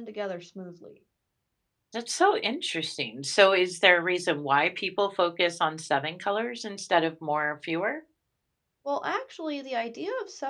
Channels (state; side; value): identical; both; correlation 1.00